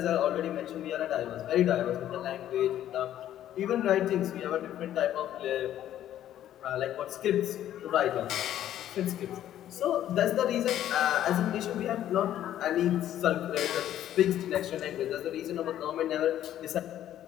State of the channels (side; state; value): right; quieter; 11.8 dB